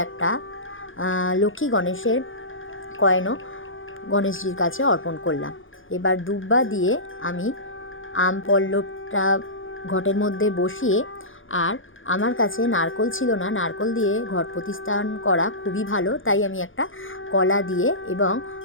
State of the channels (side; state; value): right; late; 0.58 ms